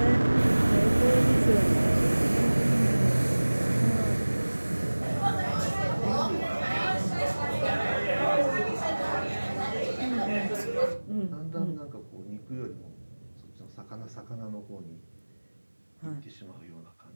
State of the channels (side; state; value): both; inverted; correlation -1.00